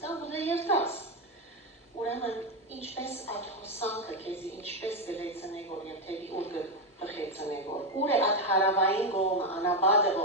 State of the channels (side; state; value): both; normal; correlation 0.08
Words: կամ կուզե երթաս։ Ուրեմն ինչպես այդ հոսանքը քեզի ինչպես գլեցնե որ եւ թեւի ուր կխեցնե որ ուր է այդ հարավային գոմը անաբադը